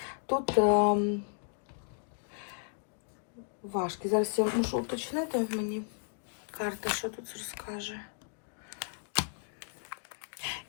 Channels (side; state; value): right; silent; digital silence